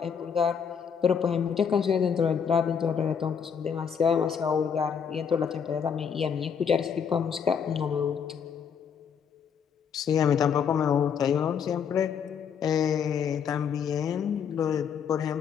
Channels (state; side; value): quieter; right; 7.1 dB